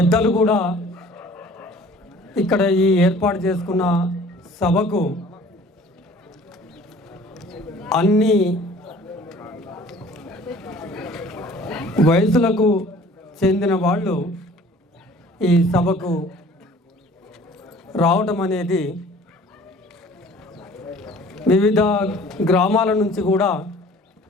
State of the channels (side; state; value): both; normal; correlation 0.50